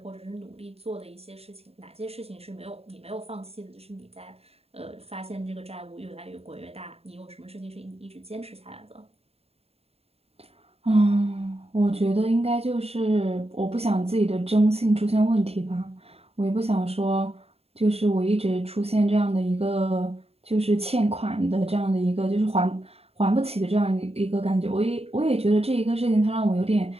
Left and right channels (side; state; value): left; late; 0.29 ms